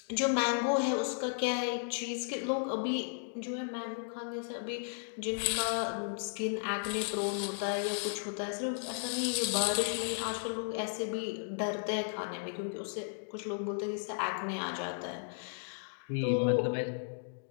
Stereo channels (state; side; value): silent; right; digital silence